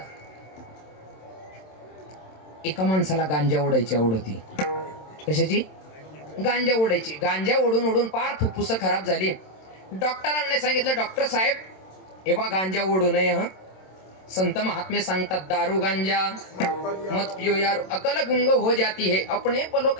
एका माणसाला गांजा ओढायची आवड होती. कशाची? गांजा ओढायची. गांजा ओढून ओढून पार फुफ्फुस खराब झाली. डॉक्टरांनी सांगितलं, डॉक्टर साहेब हे बा गांजा ओढू नये. हा, संत महात्मे सांगतात, दारू गांजा मत पियो यार, अकल गुंग हो जाती है, अपने पलो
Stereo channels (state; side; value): late; right; 27 ms